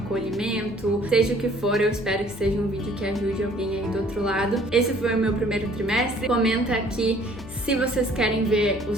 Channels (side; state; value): left; noise; hum, 16 dB below the sound